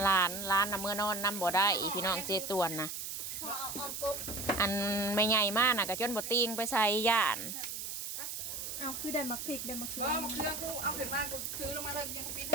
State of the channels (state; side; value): noise; right; hiss, 5 dB below the sound